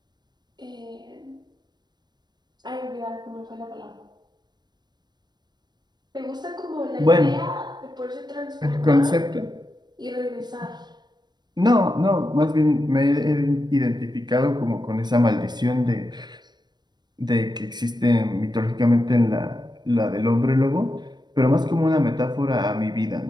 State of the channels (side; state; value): left; late; 0.21 ms